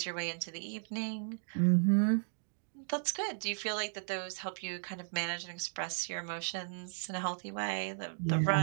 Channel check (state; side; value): silent; left; digital silence